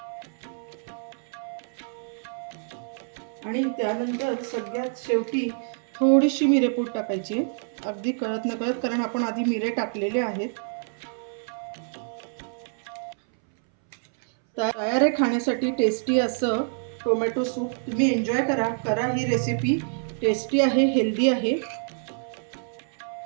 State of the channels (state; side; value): silent; left; 60 dB below the other